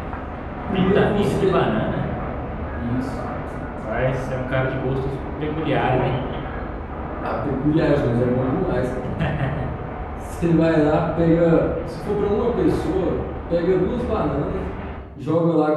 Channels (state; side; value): identical; both; correlation 1.00